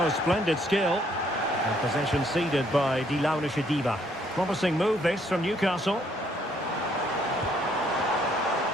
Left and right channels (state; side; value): normal; both; correlation 0.68